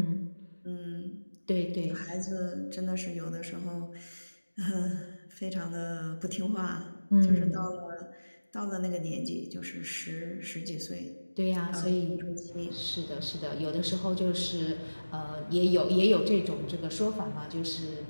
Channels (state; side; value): inverted; both; correlation -1.00